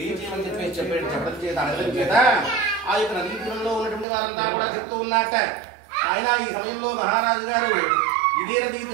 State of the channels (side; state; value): left; drops out; at 4.0 s